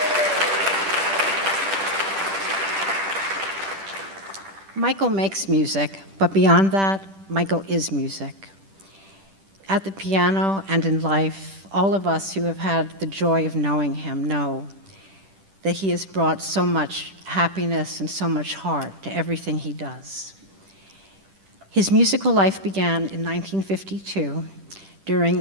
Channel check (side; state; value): left; late; 10 ms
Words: Michael makes music, but beyond that, Michael is music. At the piano and in life, all of us who have had the joy of knowing him know that he has brought so much happiness and so much heart to everything he does. His musical life began in 1952